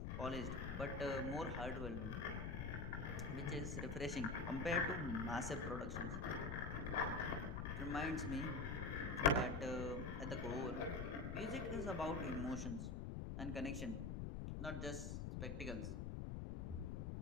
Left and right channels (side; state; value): left; noise; rumble, 3 dB below the sound